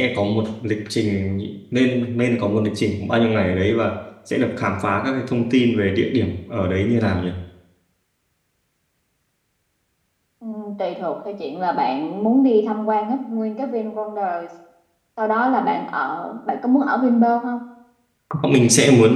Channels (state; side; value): identical; both; correlation 1.00